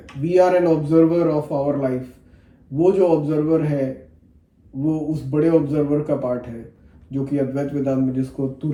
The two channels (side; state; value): both; identical; correlation 1.00